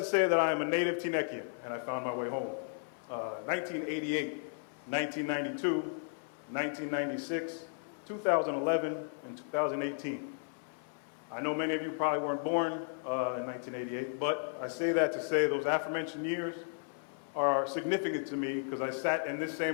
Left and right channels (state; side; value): silent; right; 55 dB below the other